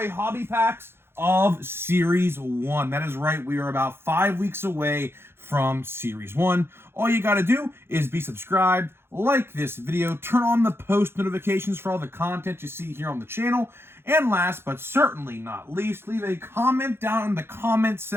hobby packs of Series 1. That is right, we are about 5 weeks away from Series 1. All you gotta do is be subscribed, like this video, turn on the post notifications for all the content you see here on the channel, and last but certainly not least, leave a comment down in the comment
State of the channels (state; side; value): late; left; 0.11 ms